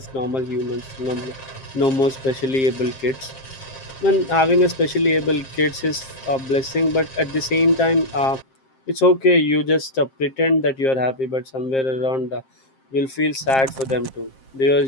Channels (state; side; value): late; right; 7.5 ms